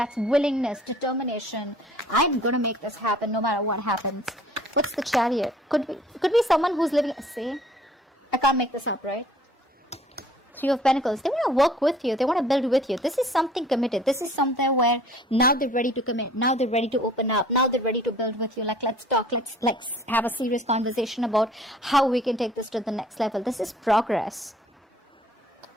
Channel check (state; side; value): normal; both; correlation 0.53